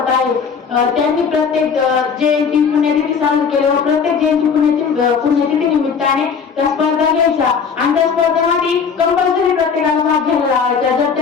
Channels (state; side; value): quieter; right; 6.1 dB